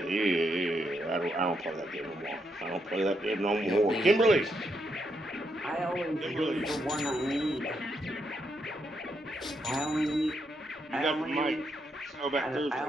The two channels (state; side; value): normal; both; correlation 0.79